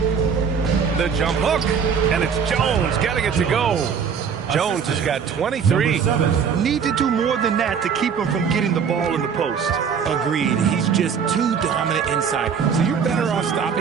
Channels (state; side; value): quieter; left; 6.7 dB